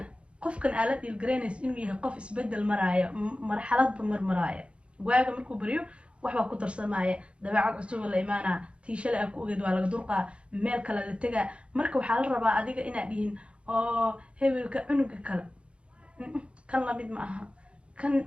qofkan aala dhiilgaraynaysa inuu yahay qof isbedel maraya marxaladba marmaraya waaga markuu bariyo waxba ku darsamaya dabeecad cusub la imaana tiishale ku ogeed waa laga durqaa meel kale la tagaa marka waxaa la rabaa adiga inaad dhihin oo hebelka cunuga kale kan la mid ma aha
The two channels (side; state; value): left; late; 0.059 ms